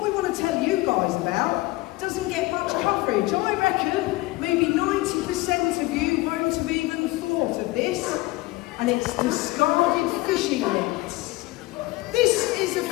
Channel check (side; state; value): right; quieter; 20.5 dB